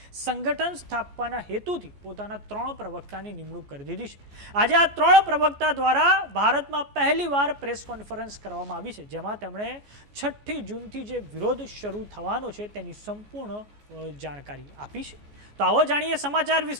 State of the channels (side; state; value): left; late; 14 ms